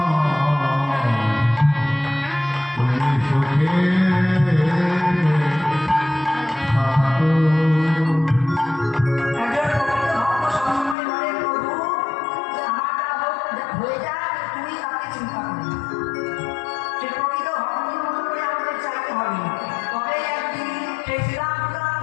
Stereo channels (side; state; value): right; drops out; at 11.0 s